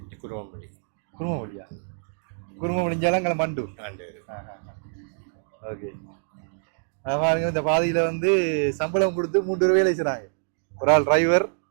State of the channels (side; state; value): left; silent; digital silence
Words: குருவம்பள்ளி. குருமபள்ளியா? குருமபள்ளிஞ்சாலங்கள மண்டூர். ஓகே. பாருங்க, இந்த பாதையில வந்து சம்பளம் கொடுத்து 3 பேர் வேலை செய்றாங்க. ஒரு ஆள் டிரைவர்